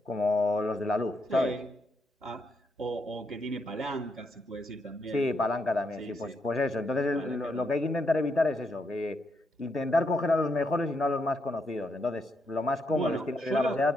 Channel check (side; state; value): both; normal; correlation 0.79